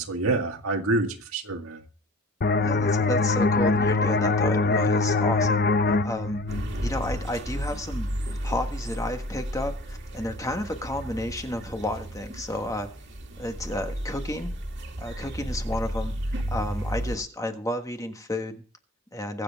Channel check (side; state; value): both; normal; correlation 0.45